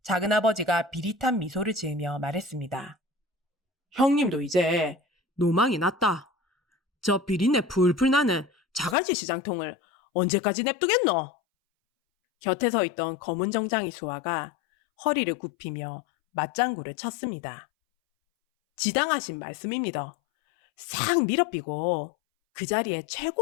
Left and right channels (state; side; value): drops out; right; at 9.0 s